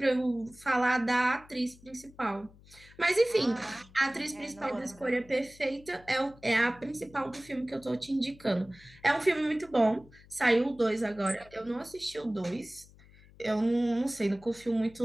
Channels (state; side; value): noise; left; hum, 24 dB below the sound